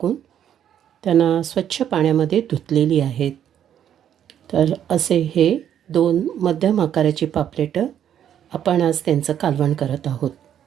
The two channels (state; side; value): quieter; left; 9.8 dB